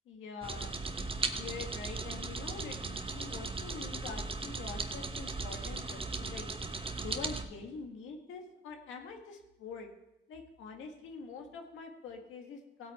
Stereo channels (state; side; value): normal; both; correlation 0.44